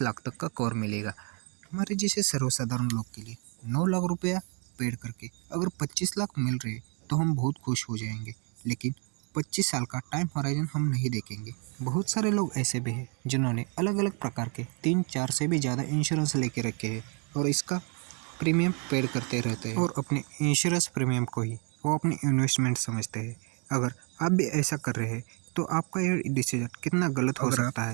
लाख तक का कवर मिलेगा। हमारे जैसे सर्वसाधारण लोग के लिए 9 लाख रुपया पेड करके अगर 25 लाख मिल रहे तो हम बहुत खुश हो जाएंगे, लेकिन 25 साल का टाइम होराइजन हम नहीं देखेंगे। बहुत सारे लोग ऐसे भी हैं जिन्होंने अलग अलग प्रकार के 3-4 से भी ज़्यादा इंश्योरेंस लेके रखे हैं और इसका प्रीमियम पेड करते रहते हैं और अपने इंश्योरेंस प्रीमियम को ही वो अपनी इन्वेस्टमेंट समझते हैं। अगर आप भी ऐसा कर रहे हैं तो आपका ये डिसीजन कितना गलत हो सकता है।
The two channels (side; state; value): left; quieter; 36.4 dB